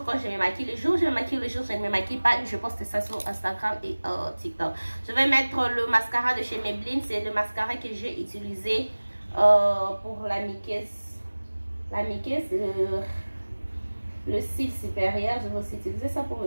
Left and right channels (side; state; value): both; inverted; correlation -1.00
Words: quand je me maquille, le jour je me maquille, le jour je ne me maquille pas, je poste ça sur Instagram et TikTok. Je vais mettre le mascara de chez Maybelline. C'est le mascara que j'ai utilisé pour la muqueuse. Le cil supérieur. Je vais aussi utiliser ça pour